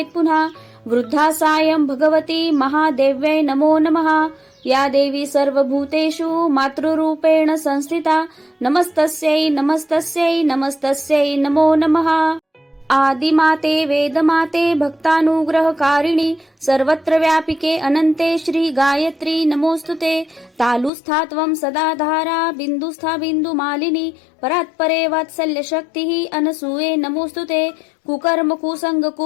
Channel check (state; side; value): drops out; right; at 20.9 s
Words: पुनः वृद्धा सायं भगवती महादेव्यै नमो नमः। या देवी सर्वभूतेषु मातृरूपेण संस्थिता नमस्तस्यै नमस्तस्यै नमस्तस्यै नमो नमः। आदिमाते वेदमाते भक्तानुग्रहकारिणि सर्वत्र व्यापिके अनन्ते श्री गायत्री नमोस्तुते तालुस्था त्वं सदा धारा बिन्दुस्था बिन्दुमालिनी परात्परे वात्सल्यशक्तिः अनसूये नमोस्तुते कुकर्म कुसंग